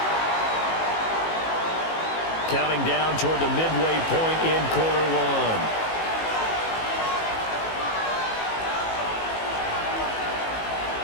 Counting down toward the midway point in quarter one.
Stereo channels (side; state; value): right; late; 18 ms